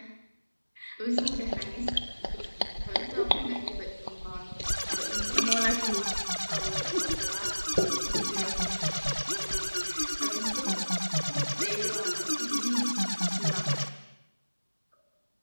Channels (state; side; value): inverted; both; correlation -1.00